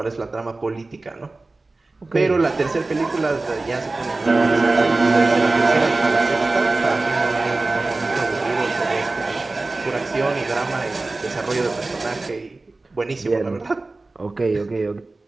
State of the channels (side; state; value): left; quieter; 3.3 dB